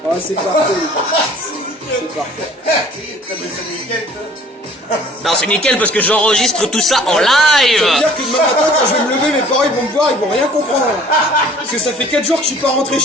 Ah c'est parfait. C'est parfait. C'est nickel, toi. Non, c'est nickel parce que j'enregistre tout ça en Ça veut live. dire que demain matin, quand je vais me lever, mes parents ils vont me voir, ils vont rien comprendre. Parce que ça fait 4 jours que je suis pas rentré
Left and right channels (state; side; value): normal; both; correlation 0.52